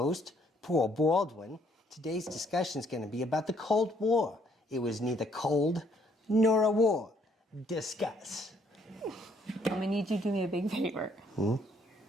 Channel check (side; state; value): both; normal; correlation 0.67